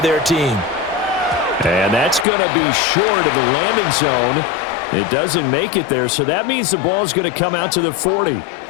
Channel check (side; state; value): right; drops out; at 2.2 s